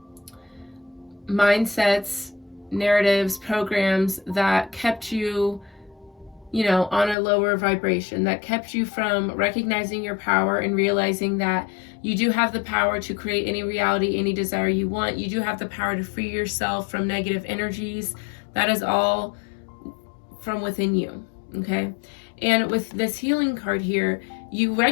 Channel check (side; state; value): right; drops out; at 7.2 s